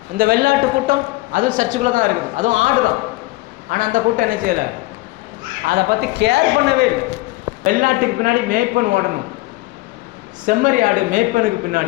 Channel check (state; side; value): quieter; right; 20.9 dB